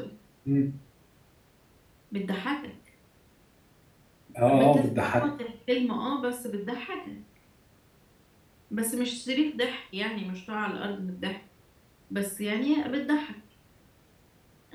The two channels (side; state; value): both; identical; correlation 1.00